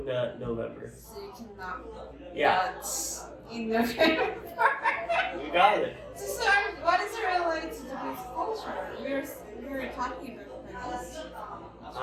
Nut November. So you cannot Yeah, nut in November. you got it. So what is it related to Japanese culture? We were talking about this.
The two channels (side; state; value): both; identical; correlation 1.00